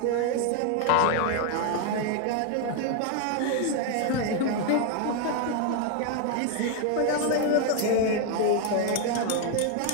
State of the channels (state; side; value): different; both; correlation 0.01